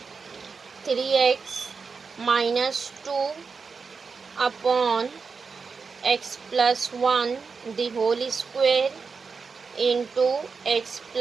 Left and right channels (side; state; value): left; quieter; 5.1 dB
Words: 3x minus 2 upon x plus 1 the whole square into x